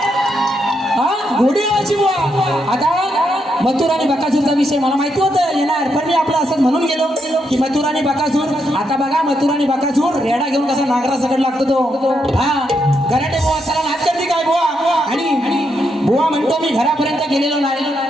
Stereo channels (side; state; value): both; normal; correlation 0.80